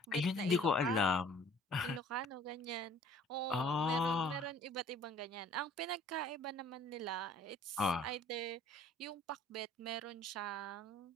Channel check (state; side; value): normal; both; correlation 0.53